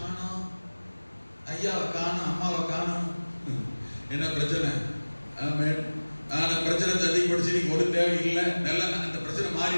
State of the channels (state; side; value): inverted; both; correlation -1.00